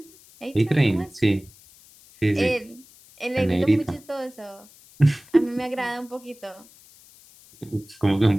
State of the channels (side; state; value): left; noise; hiss, 25 dB below the sound